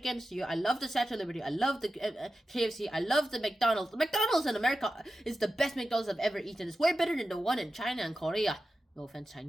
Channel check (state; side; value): normal; both; correlation 0.93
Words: you. I love the Statue of Liberty. I love the KFC. I love the McDonald's. The McDonald's in America is the best McDonald's I've ever eaten. It's way better than the one in China and Korea. No offense,